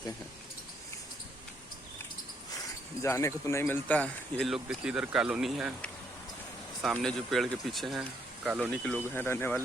हैं। जाने को तो नहीं मिलता। ये लोग देखिए इधर कॉलोनी है, सामने जो पेड़ के पीछे हैं कॉलोनी के लोग हैं रहने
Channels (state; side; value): normal; both; correlation 0.72